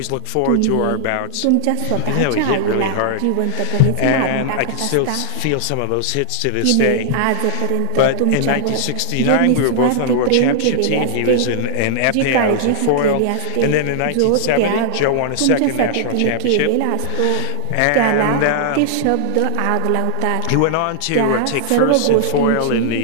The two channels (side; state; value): both; different; correlation -0.01